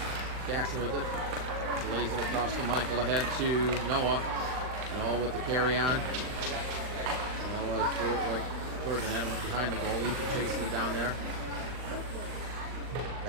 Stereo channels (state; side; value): late; left; 39 ms